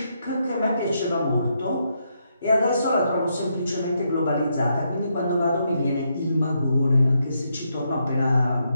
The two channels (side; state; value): both; inverted; correlation -0.79